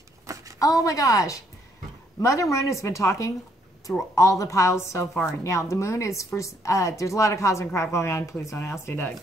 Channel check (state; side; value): normal; both; correlation 0.70